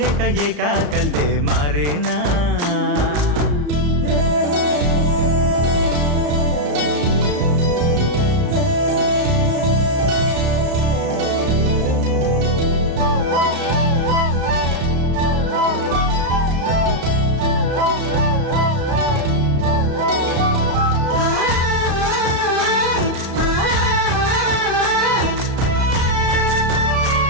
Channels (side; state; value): left; late; 34 ms